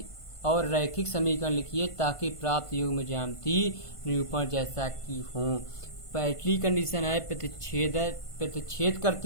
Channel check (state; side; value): late; right; 1.5 ms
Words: और रैखिक समीकरण लिखिए ताकि प्राप्त युग्म ज्यामिति निरूपण जैसा कि हो। पहली कंडीशन है प्रतिच्छेद